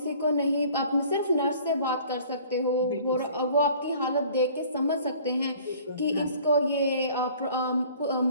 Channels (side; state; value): both; inverted; correlation -0.51